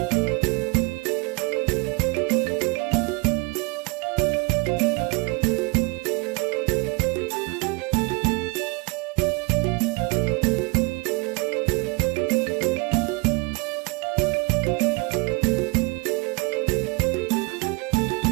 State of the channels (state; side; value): quieter; left; 28.5 dB